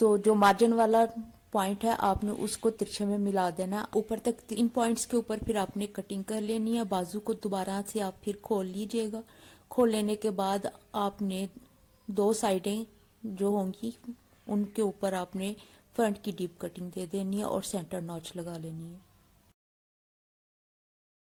जो मार्जिन वाला पॉइंट है आपने उसको तिरछे में मिला देना ऊपर तक। इन पॉइंट्स के ऊपर फिर आपने कटिंग कर लेनी है। बाजू को दोबारा से आप फिर खोल लीजिएगा। खोल लेने के बाद आपने 2 साइडें जो होंगी उनके ऊपर आपने फ्रंट की डीप कटिंग दे देनी है और सेंटर नॉच लगा लेनी है।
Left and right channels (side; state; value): both; identical; correlation 1.00